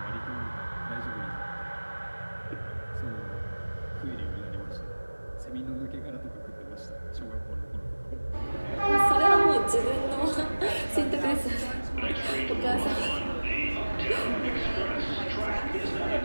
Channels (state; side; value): inverted; both; correlation -1.00